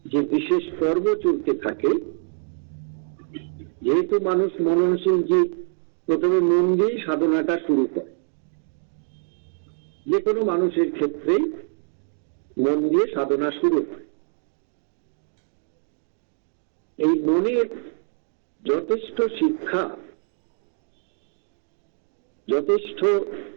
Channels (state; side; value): silent; left; 62 dB below the other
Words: যে বিশেষ পর্ব চলতে থাকে। যেহেতু মানুষ মননশীল জীব, প্রথমে মন দিয়েই সাধনাটা শুরু করে। যে কোনো মানুষের ক্ষেত্রেই মন দিয়ে সাধনা শুরু হয়। এই মনের যথেষ্ট শিক্ষা, যথেষ্ট